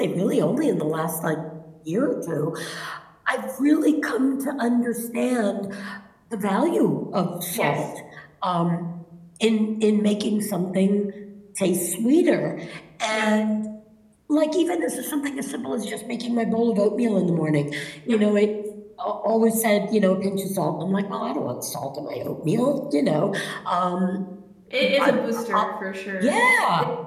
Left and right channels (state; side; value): identical; both; correlation 1.00